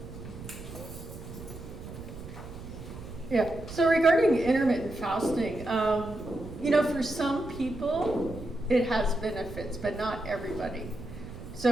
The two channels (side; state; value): right; noise; rumble, 12 dB below the sound